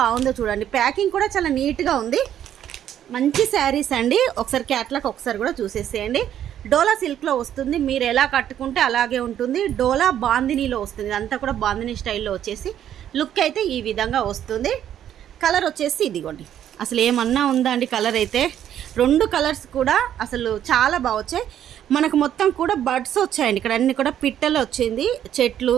చూడండి, ప్యాకింగ్ కూడా చాలా నీట్గా ఉంది. మంచి శారీస్ అండి. ఒకసారి క్యాట్లాగ్ ఒకసారి కూడా చూసేసేయండి. డోలా సిల్క్లో వస్తుంది, మీరు ఎలా కట్టుకుంటే అలాగే ఉంటుంది. డోలా బాందినీలో వస్తుంది, ఇదంతా కూడా బాందినీ స్టైల్లో వచ్చేసి లుక్ అయితే ఈ విధంగా వస్తుంది. కలర్ వచ్చేసి ఇదిగోండి, అసలు ఏమన్నా ఉందా అండి కలర్ అయితే. 2 కలర్స్ కూడా అసలు చాలా బాగా వచ్చాయి. మనకు మొత్తం కూడా బడ్స్ వచ్చాయండి. ఇక్కడ అన్ని కూడా పిట్టలు వచ్చింది, చెట్లు,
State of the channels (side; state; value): left; quieter; 10.5 dB